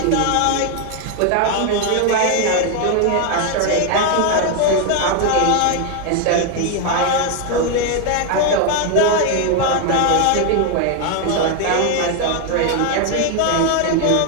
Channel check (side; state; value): both; different; correlation 0.01